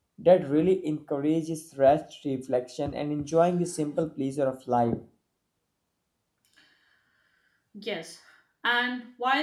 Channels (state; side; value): identical; both; correlation 1.00